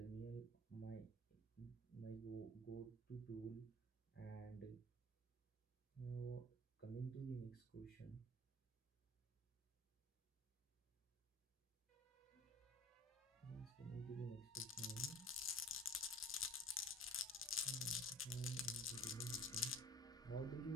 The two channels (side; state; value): both; normal; correlation 0.43